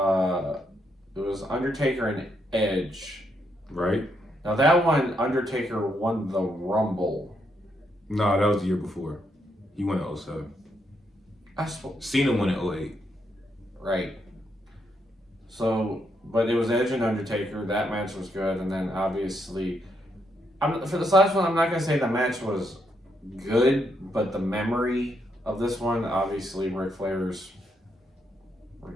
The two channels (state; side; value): normal; both; correlation 0.78